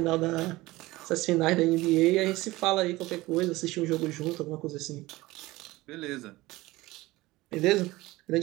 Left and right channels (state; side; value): quieter; left; 19.3 dB